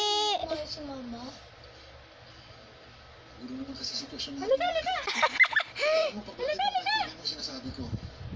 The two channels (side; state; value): both; identical; correlation 1.00